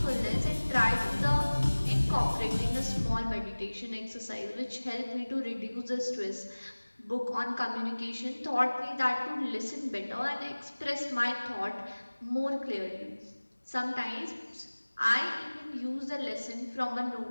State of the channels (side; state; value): both; inverted; correlation -1.00